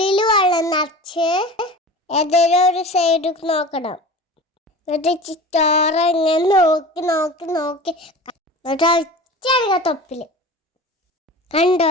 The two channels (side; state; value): both; normal; correlation 0.36